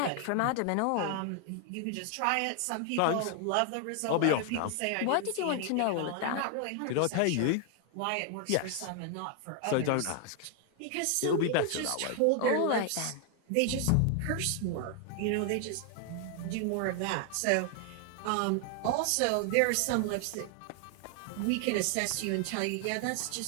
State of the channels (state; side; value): different; both; correlation 0.00